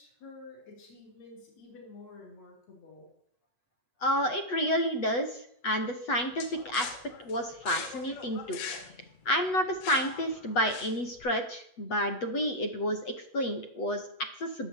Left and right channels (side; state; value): right; late; 8.2 ms